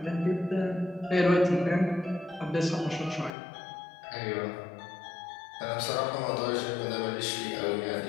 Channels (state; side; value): drops out; right; at 3.3 s